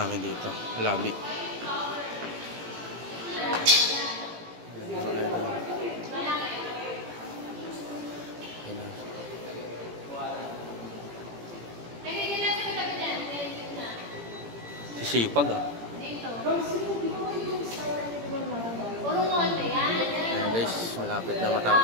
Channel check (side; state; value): left; late; 17 ms